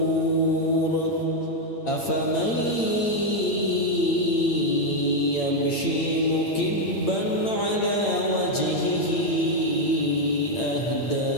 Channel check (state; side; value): late; right; 8.8 ms